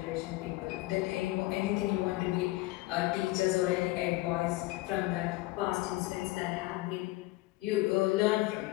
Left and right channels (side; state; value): right; quieter; 19.7 dB